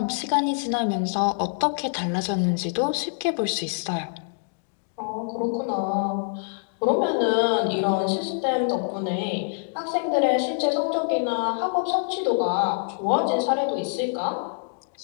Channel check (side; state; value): right; silent; digital silence